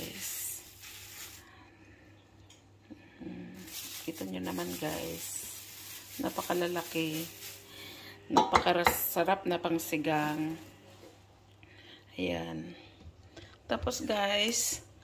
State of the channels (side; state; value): both; identical; correlation 1.00